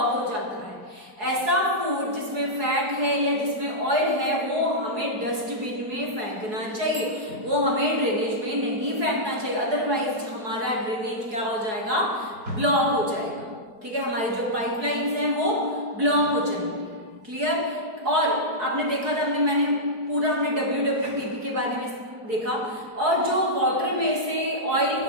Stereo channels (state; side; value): late; left; 4.7 ms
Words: हो जाता है. ऐसा फूड जिसमें फैट है या जिसमें ऑयल है वो हमें डस्टबिन में फेंकना चाहिए, वो हमें ड्रेनेज में नहीं फेंकना चाहिए. अदरवाइज हमारा ड्रेनेज क्या हो जाएगा, ब्लॉक हो जाएगा. ठीक है, हमारी जो पाइपलाइंस हैं वो ब्लॉक हो जाएंगी. क्लियर. और आपने देखा था मैंने WWTP के बारे में देखा, और जो वाटर में से ऑयल